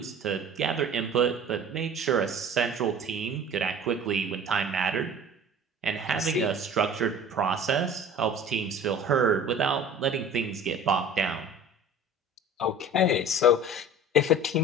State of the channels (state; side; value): normal; both; correlation 0.42